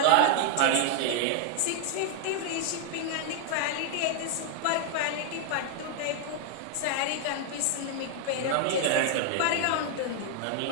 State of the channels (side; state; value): both; different; correlation 0.00